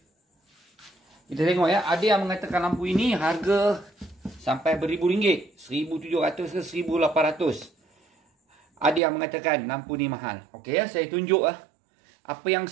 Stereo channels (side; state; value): left; drops out; at 9.0 s